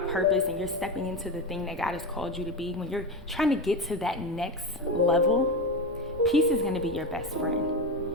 purpose, and you're stepping into the thing that God has called you to be, when you're trying to get to that next level, peace is going to be your best friend.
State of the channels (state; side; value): normal; both; correlation 0.18